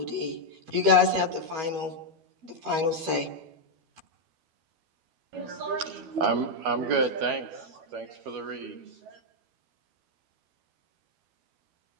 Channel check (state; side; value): late; left; 12 ms